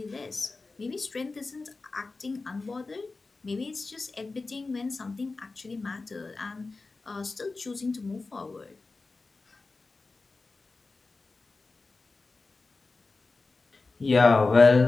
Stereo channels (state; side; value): quieter; right; 3.7 dB